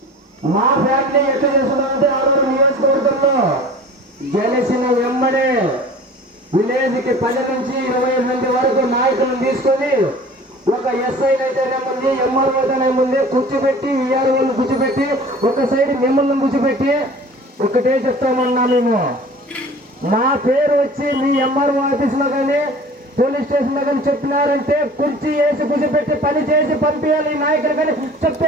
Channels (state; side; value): normal; both; correlation 0.43